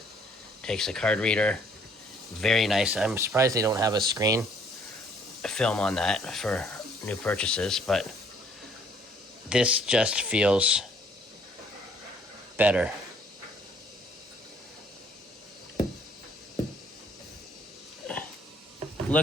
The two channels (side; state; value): both; normal; correlation 0.61